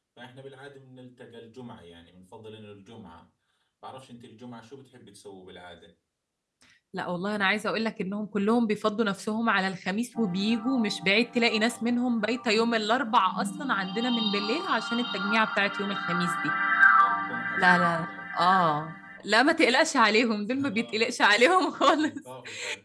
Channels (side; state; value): both; identical; correlation 1.00